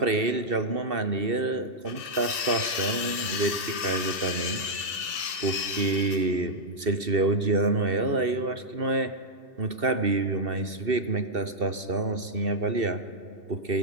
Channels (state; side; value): late; left; 2.7 ms